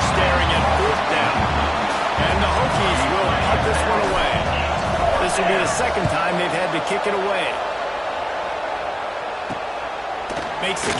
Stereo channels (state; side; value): identical; both; correlation 1.00